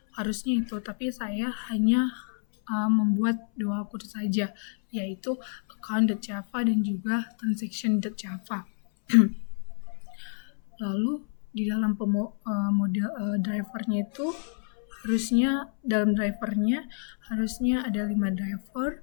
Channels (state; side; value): silent; right; 59 dB below the other